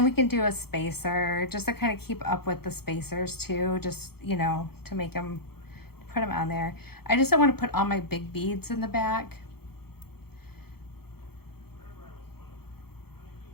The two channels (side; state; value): right; late; 0.95 ms